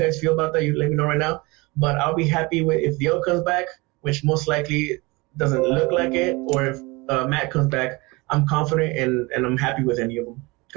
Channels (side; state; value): left; quieter; 24.4 dB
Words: feel about that. You let me know right now. But I'll be happy if Theo comes back, which most likely doesn't look like it, or if Matt comes back. I'm confident and I'm happy with any of them.